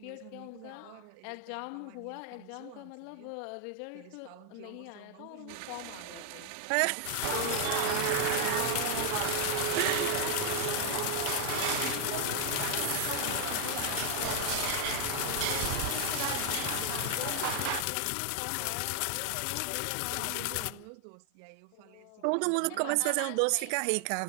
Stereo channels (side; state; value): both; different; correlation 0.00